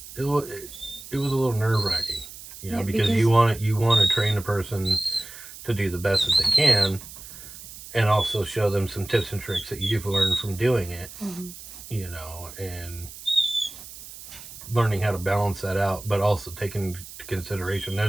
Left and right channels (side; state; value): right; noise; hiss, 15 dB below the sound